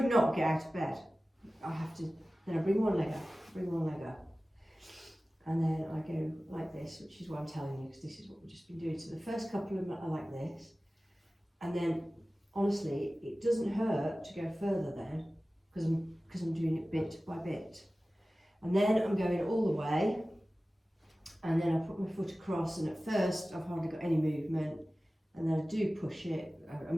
not get out of bed. I have to, then I bring one leg up, and then I go like this, which is what I'm telling you, because this is what we've just been doing. So the first couple of them are like this, and then, honestly, it doesn't hurt to go further then, because I'm doing it bit by bit. And then I'm going all the way, and then I put my foot across, and at first I've hardly got any movement, and then I do push it.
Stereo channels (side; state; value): both; normal; correlation 0.96